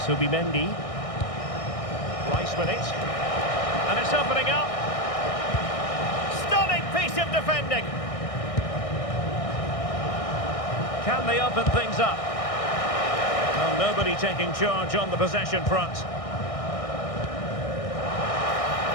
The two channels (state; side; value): late; right; 1.6 ms